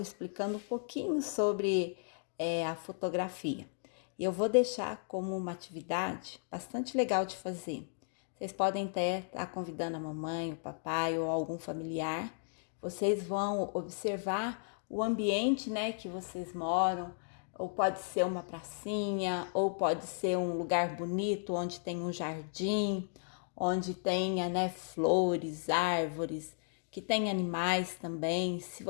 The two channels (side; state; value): right; silent; digital silence